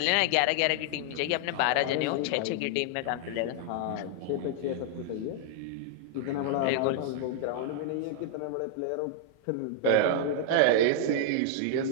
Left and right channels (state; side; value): different; both; correlation -0.01